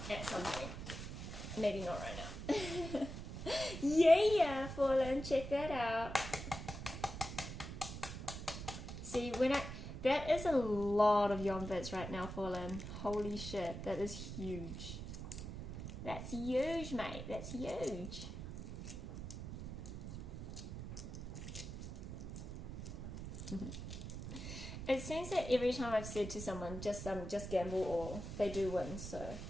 Maybe not right now. Yeah, Fallen, check that out. See, that is a lot of yum bits right now, Fallen. Holy shit, that is huge. That's huge, mate. That's huge. It seems that every time I've said to someone, just gamble or they do win. So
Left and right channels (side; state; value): right; noise; rumble, 8 dB below the sound